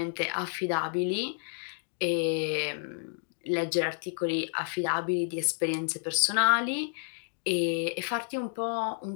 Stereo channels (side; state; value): right; silent; digital silence